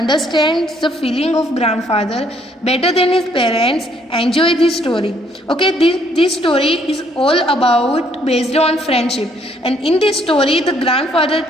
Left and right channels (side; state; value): both; normal; correlation 0.66